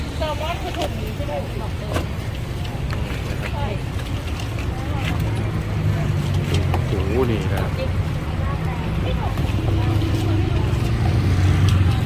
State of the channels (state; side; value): identical; both; correlation 1.00